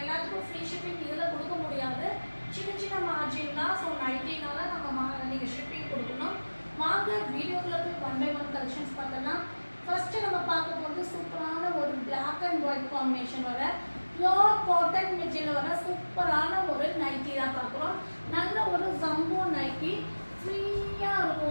ஃப்ரீ ஷிப்பிங் இதில் கொடுக்க முடியாது, சின்ன சின்ன மார்ஜின் தான். ஸோ நைட்டினால நம்ம நீங்கள் ஷிப்பிங் கொடுக்கணும். வாங்க வீடியோக்குள்ளே போய் 1 by 1 கலெக்ஷன்ஸ் பார்த்தோம்னா ஃபஸ்ட்டு நம்ம பார்க்க போகிறது சூப்பரான ஒரு பிளாக் அண்ட் ஒயிட் காம்பினேஷன் வர பியோர் காட்டன் மெட்டீரியல் வர சூப்பரான ஒரு நைட்டி தான் பார்க்குறோம். நல்ல ஒரு ஜம்போ நைட்டி ஃப்ரீயாக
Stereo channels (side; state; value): both; inverted; correlation -1.00